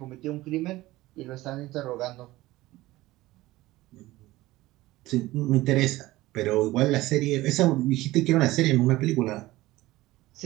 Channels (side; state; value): left; quieter; 18.0 dB